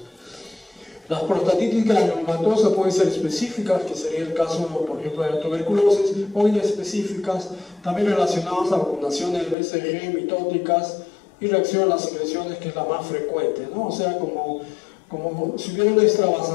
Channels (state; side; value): drops out; right; at 9.6 s